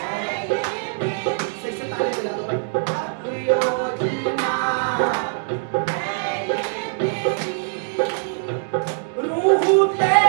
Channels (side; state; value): left; silent; digital silence